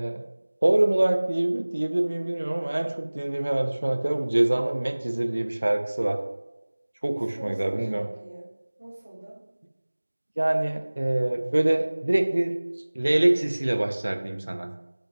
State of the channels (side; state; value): both; inverted; correlation -1.00